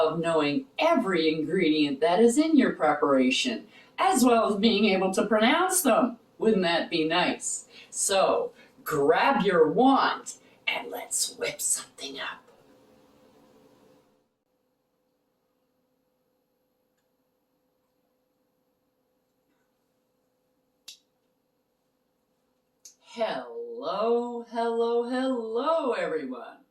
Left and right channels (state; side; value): identical; both; correlation 1.00